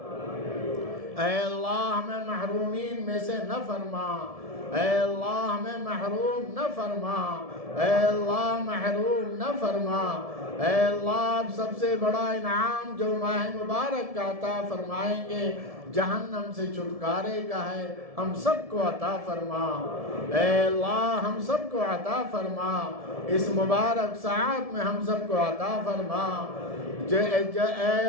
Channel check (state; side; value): late; left; 1.7 ms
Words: اے اللہ ہمیں محرومین میں سے نہ فرما. اے اللہ ہمیں محروم نہ فرما. اے اللہ محروم نہ فرما. اے اللہ سب سے بڑا انعام جو ماہ مبارک کا عطا فرمائیں گے جہنم سے چھٹکارے کا ہے, ہم سب کو عطا فرما. اے اللہ ہم سب کو عطا فرما. اس مبارک ساعت میں ہم سب کو عطا فرما.